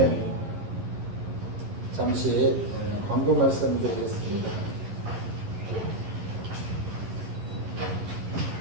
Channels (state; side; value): late; left; 11 ms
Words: 잠시 광고 말씀 드리겠습니다.